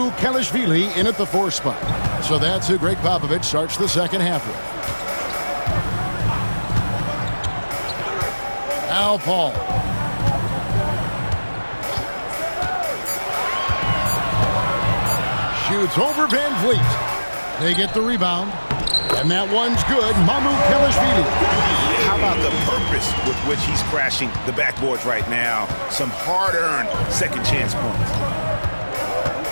Kelishvili in at the 4 spot. So that's who Greg Popovich starts the second half with. Al Paul. Shoots over Van Vliet. They get the rebound. And that one's good. Mamu Kelishvili. How about the purpose with which he's crashing the backboards right now? Some hard-earned second chance points.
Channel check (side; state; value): both; inverted; correlation -1.00